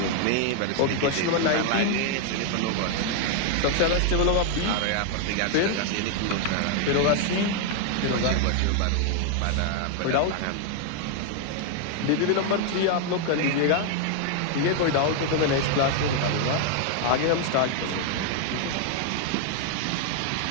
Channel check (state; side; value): different; both; correlation 0.00